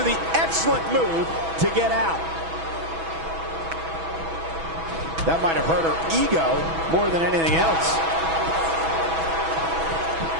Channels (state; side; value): late; left; 6.1 ms